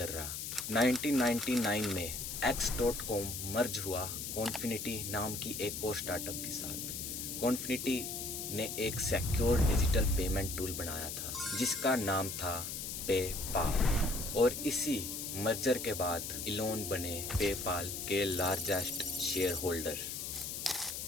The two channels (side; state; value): left; noise; hiss, 5 dB below the sound